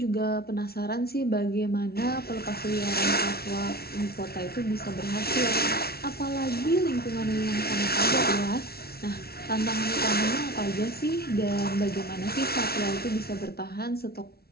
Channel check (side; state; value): right; late; 0.45 ms